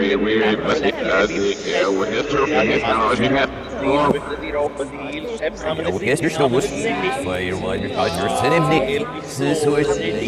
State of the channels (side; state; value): both; identical; correlation 1.00